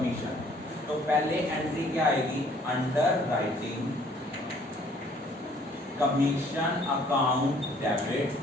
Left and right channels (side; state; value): both; normal; correlation 0.59